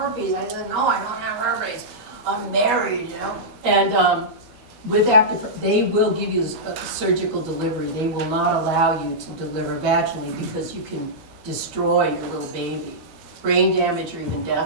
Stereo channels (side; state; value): left; late; 12 ms